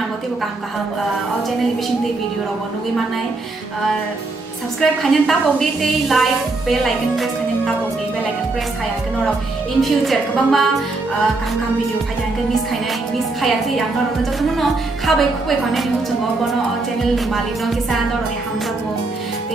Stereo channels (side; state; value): left; quieter; 3.3 dB